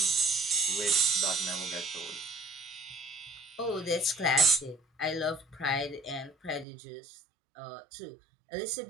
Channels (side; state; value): left; drops out; at 6.7 s